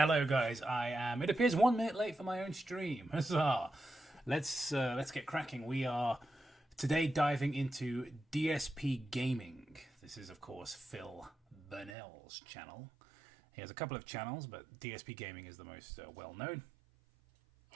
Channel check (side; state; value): left; drops out; at 12.0 s